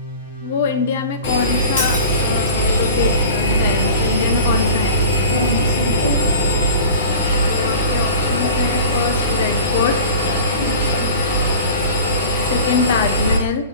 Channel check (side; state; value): both; inverted; correlation -0.38